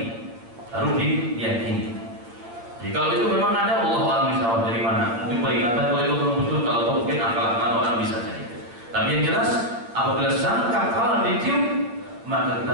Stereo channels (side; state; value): left; late; 8.8 ms